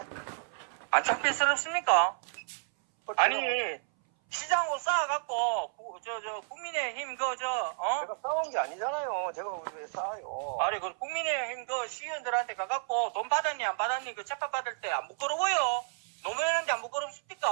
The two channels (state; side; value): silent; left; 57 dB below the other